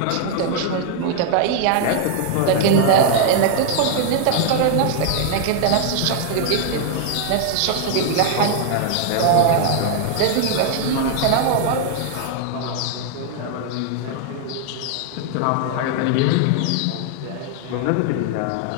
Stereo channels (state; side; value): different; both; correlation 0.00